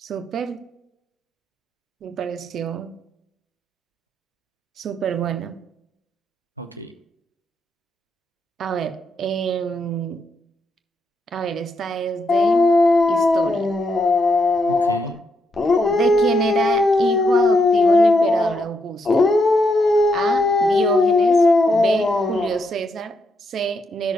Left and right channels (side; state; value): both; normal; correlation 0.79